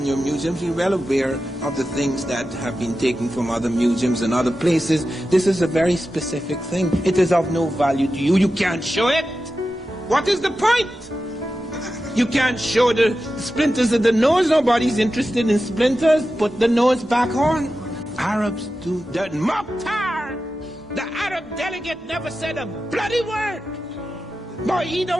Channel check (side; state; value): both; normal; correlation 0.92